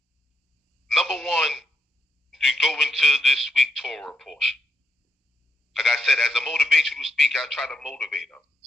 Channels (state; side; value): normal; both; correlation 0.82